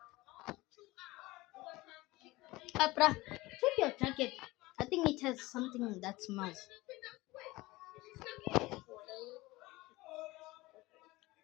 Bruh, check your jacket. I think it has something that smells.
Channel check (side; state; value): right; quieter; 20.3 dB